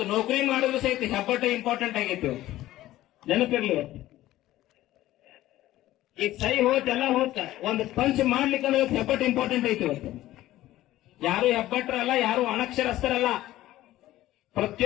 ನೌಕರಿ ಮಾಡಿದ್ರು ಸಹಿತ ಹೆಬ್ಬಟ್ಟ ಇಂಪಾರ್ಟೆಂಟ್ ಆಗೈತಿ. ನೆನಪಿರ್ಲಿ, ಈಗ ಸೈ ಹೋತ್ ಎಲ್ಲ ಹೋತ, ಒಂದು ಪಂಚ್ ಮಾಡ್ಲಿಕ್ಕಂದ್ರೆ ಹೆಬ್ಬಟ್ಟು ಇಂಪಾರ್ಟೆಂಟ್ ಐತಿ. ಇವತ್ತು ಯಾರು ಹೆಬ್ಬಟ್ರಲ್ಲ, ಯಾರು ಅನಕ್ಷರಸ್ಥರಲ್ಲ.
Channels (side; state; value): right; quieter; 15.2 dB